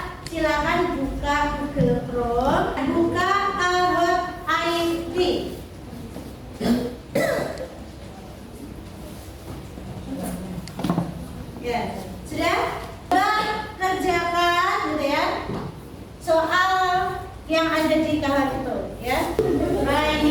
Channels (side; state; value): both; identical; correlation 1.00